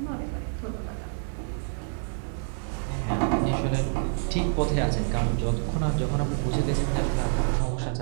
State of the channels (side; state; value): left; silent; digital silence